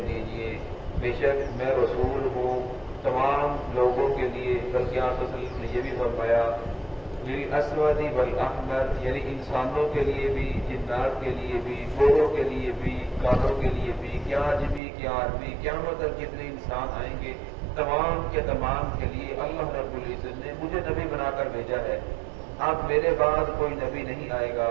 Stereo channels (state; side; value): drops out; left; at 14.8 s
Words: دیجئے بے شک میں رسول ہوں تمام لوگوں کے لیے بلکہ آپ صلی اللہ علیہ وسلم نے یہ بھی فرمایا للاسود والاحمر یعنی انسانوں کے لیے بھی جنات کے لیے بھی گوروں کے لیے بھی کالوں کے لیے بھی کیا عجمی کیا آدمی قیامت تک جتنے انسان آئیں گے تمام کے تمام کے لیے اللہ رب العزت نے مجھے نبی بنا کر بھیجا ہے اب میرے بعد کوئی نبی نہیں آئے گا